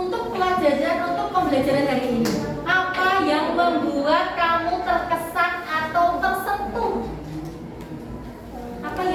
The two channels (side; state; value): both; identical; correlation 1.00